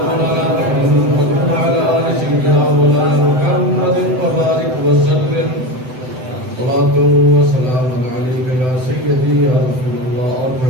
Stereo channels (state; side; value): late; left; 7.9 ms